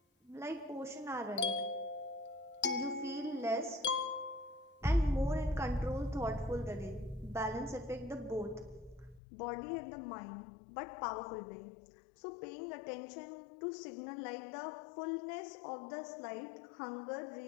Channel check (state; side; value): drops out; right; at 9.2 s